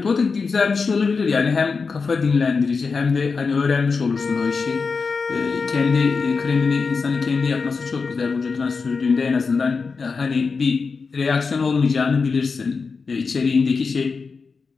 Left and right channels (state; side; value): quieter; right; 4.8 dB